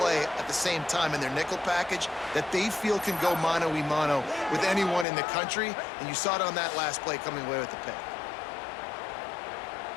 at the same time in their nickel package that they feel can go mano-a-mano with anyone in the country, and you saw it on that last play coming away with the pick.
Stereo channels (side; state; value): right; drops out; at 5.1 s